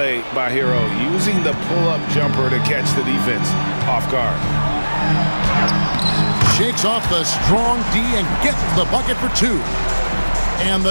by Hero, using the pull-up jumper to catch the defense off guard. Shakes off the strong D and gets the bucket for 2. And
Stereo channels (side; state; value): both; inverted; correlation -1.00